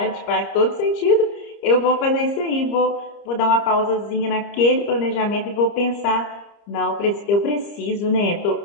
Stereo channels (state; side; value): late; right; 30 ms